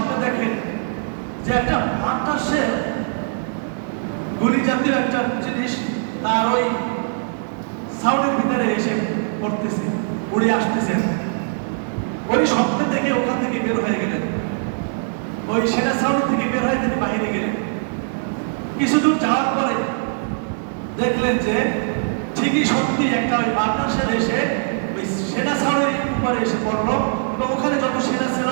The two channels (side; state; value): left; silent; 65 dB below the other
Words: দেখেন যে একটা বাতাসে গুলি জাতীয় একটা জিনিস তার ওই ছাউনির ভিতরে এসে পড়তেছে, উড়ে আসতেছে। ওই স্বপ্ন দেখে ওখান থেকে বের হয়ে গেলেন, ওই সেনা ছাউনি থেকে বের হয়ে তিনি বাইরে গেলেন। কিছু দূর যাওয়ার পরে দেখলেন যে ঠিকই সত্যি একটা ওই বাতাসের এসে ওই সেনা ছাউনির উপরে এসে পড়লো এবং ওখানে যত সেনা ছিল,